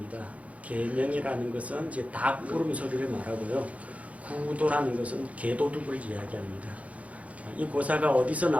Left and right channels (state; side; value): late; left; 0.066 ms